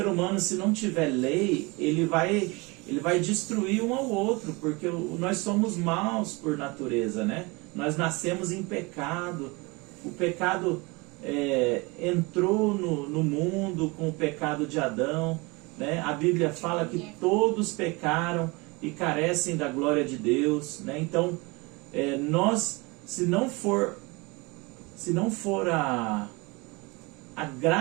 se não tiver lei, ele vai destruir um ao outro, porque nós somos maus por natureza, né? Nós nascemos em pecado. O pecado entrou no mundo com o pecado de Adão, né? A Bíblia fala que todos pecaram e carecem da glória de Deus, né? Então, nós, se não for a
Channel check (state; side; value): quieter; left; 26.1 dB